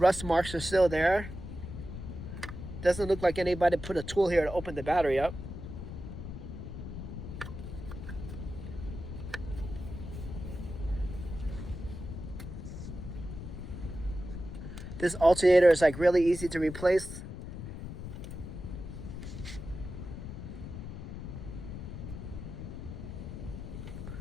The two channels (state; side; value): noise; left; rumble, 8 dB below the sound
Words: marks are still there. Doesn't look like anybody put a tool here to open the battery up. This alternator is like really easy to replace.